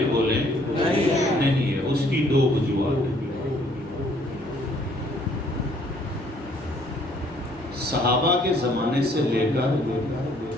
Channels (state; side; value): normal; both; correlation 0.63